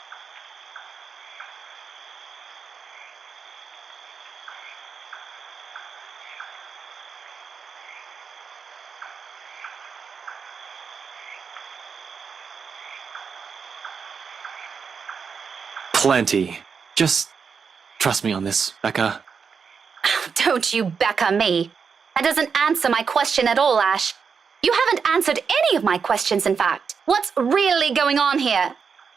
Plenty. Just trust me on this, Becca. Don't you Becca me. That doesn't answer my question at all, Ash. You haven't answered any of my questions, in fact. What's really going on here?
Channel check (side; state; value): left; quieter; 6.0 dB